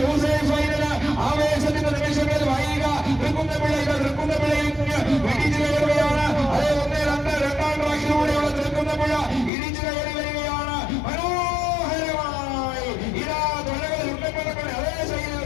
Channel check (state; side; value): drops out; right; at 9.5 s